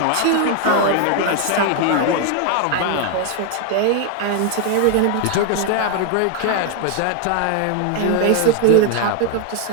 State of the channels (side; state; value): both; different; correlation 0.00